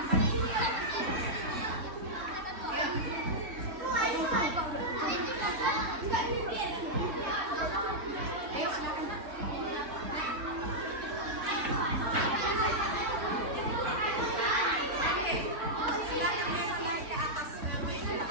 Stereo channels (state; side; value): late; left; 3.6 ms